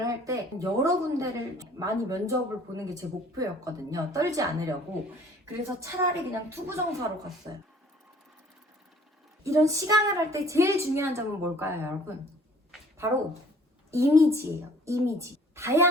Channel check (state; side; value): normal; both; correlation 0.55